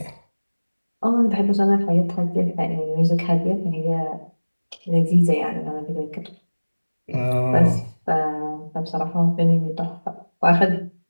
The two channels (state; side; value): inverted; both; correlation -1.00